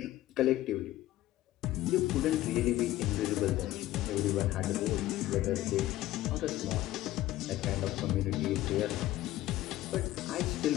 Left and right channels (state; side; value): quieter; right; 15.4 dB